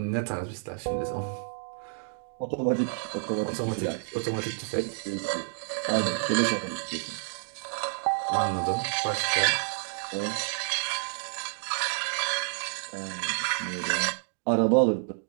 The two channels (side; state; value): left; silent; digital silence